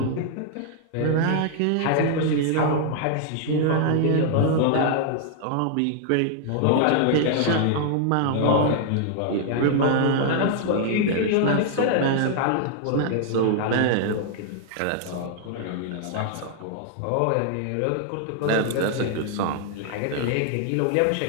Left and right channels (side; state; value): both; different; correlation 0.00